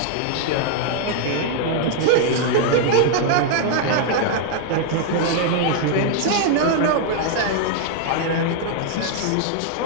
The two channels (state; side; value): different; both; correlation 0.00